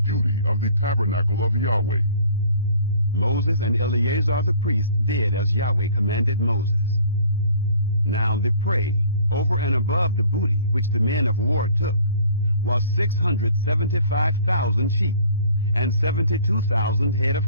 of the tabernacle of Yahweh." Moses and Eleazar the priest did as Yahweh commanded Moses. Now the prey, over and above the booty which the men of war took, was 675,000 sheep, and 72,000 head of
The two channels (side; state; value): both; inverted; correlation -0.52